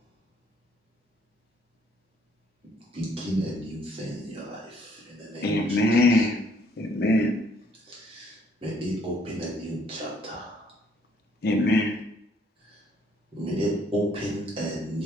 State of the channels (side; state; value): both; normal; correlation 0.65